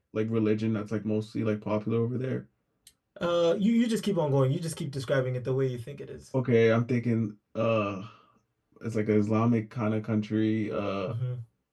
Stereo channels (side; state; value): both; identical; correlation 1.00